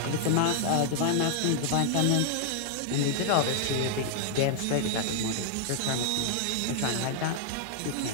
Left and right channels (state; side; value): different; both; correlation -0.01